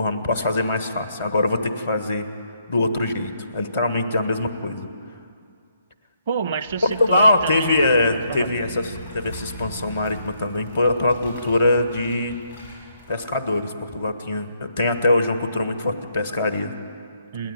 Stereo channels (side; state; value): both; inverted; correlation -0.73